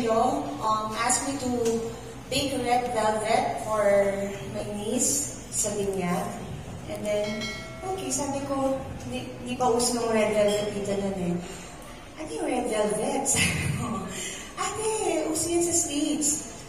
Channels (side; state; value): both; identical; correlation 1.00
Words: asked me to bake red velvet for my niece sa binyag. And then, okay, sabi ko, hindi pa uso ng red velvet dito nun eh. Ano yung red velvet? Sabi ko, ate, uso yan sa States.